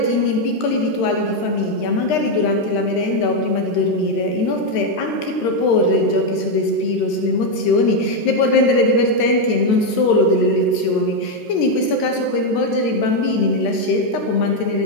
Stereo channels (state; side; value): late; right; 13 ms